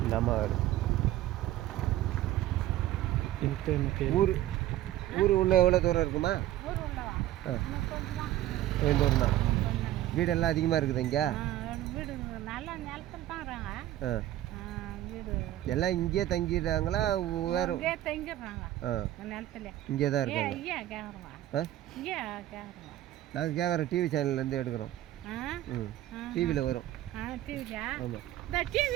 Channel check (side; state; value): left; quieter; 13.9 dB